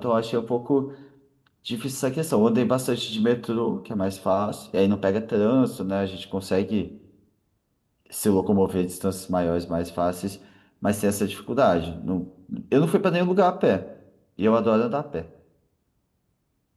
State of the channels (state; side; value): identical; both; correlation 1.00